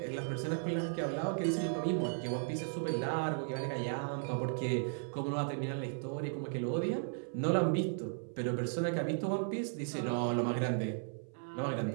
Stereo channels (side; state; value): left; silent; 54 dB below the other